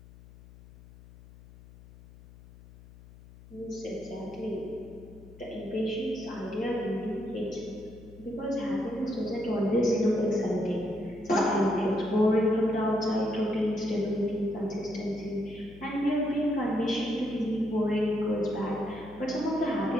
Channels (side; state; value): left; noise; hum, 20 dB below the sound